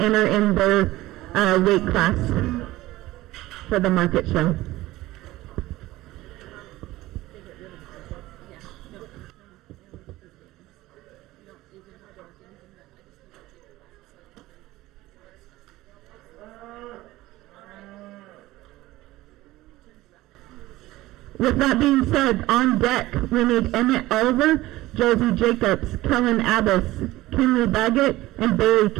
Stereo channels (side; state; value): left; quieter; 17.4 dB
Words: in their weight class for the market show. With that being said, on deck, we need Emmett Oliver, Josie Jacobs, Kellen Abbas, Kinley Baggett, and Barry